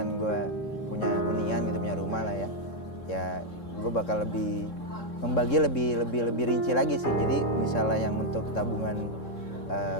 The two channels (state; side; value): late; right; 3.7 ms